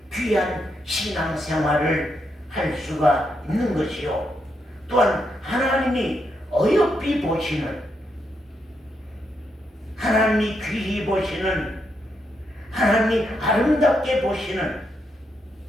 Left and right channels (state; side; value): normal; both; correlation 0.80